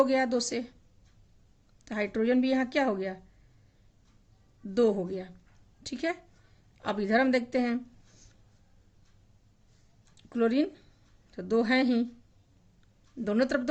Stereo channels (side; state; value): both; identical; correlation 1.00